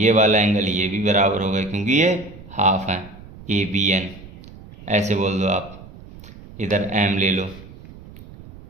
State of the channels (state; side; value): noise; right; rumble, 18 dB below the sound